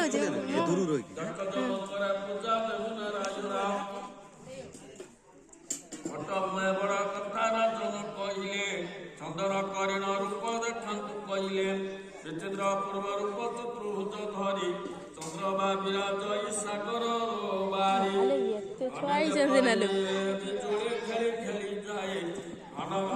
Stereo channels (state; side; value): identical; both; correlation 1.00